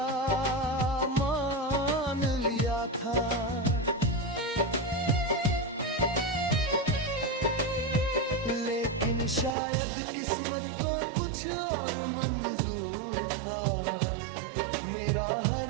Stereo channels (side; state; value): left; drops out; at 9.5 s